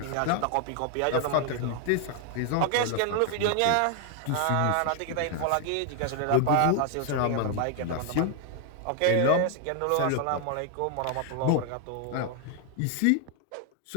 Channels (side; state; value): both; different; correlation 0.00